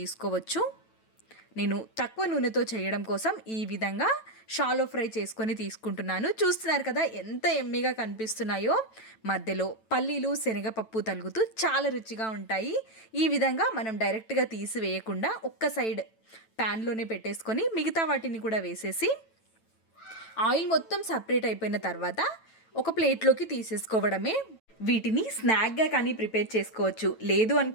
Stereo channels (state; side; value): late; right; 9.1 ms